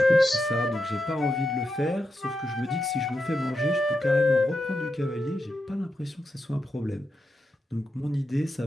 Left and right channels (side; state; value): both; normal; correlation 0.86